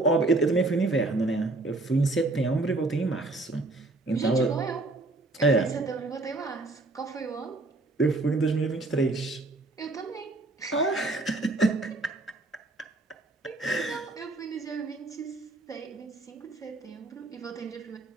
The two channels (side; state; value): left; quieter; 3.1 dB